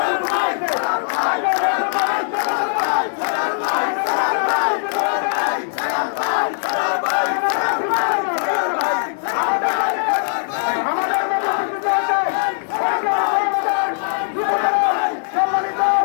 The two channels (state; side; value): silent; right; digital silence